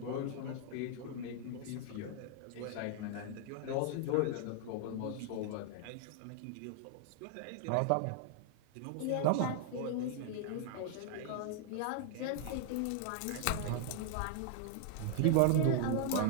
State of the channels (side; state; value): both; different; correlation 0.00